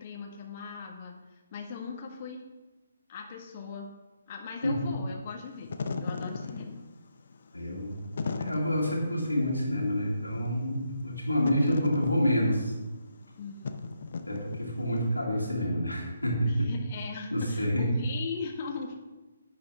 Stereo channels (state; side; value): inverted; both; correlation -0.80